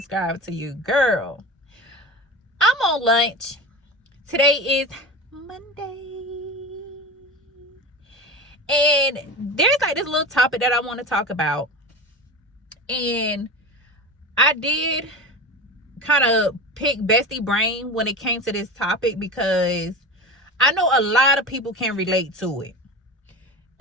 to your girl. I'm on lunch. Today is Monday, and there's like this little topic that I want to talk about, and I did kind of pick bestie brain when it came to this topic because I know a lot of people can relate to it.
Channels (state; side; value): normal; both; correlation 0.28